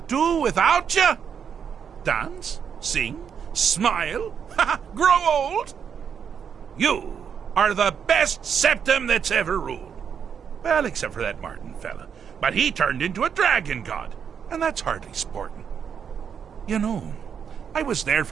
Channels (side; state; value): left; quieter; 7.4 dB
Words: do without you? Dance? Sing? Smile? Grow old? You are the best septum that's ever ruled. Well, except for that Martin fella. But he turned into a dragon god, and that's hardly sporting. You know, I was there